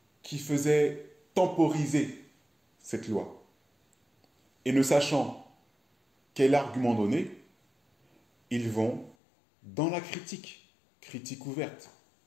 qui faisaient temporiser cette loi. Et ne sachant quel argument donner, ils vont dans la critique ouverte,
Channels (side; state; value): right; drops out; at 9.2 s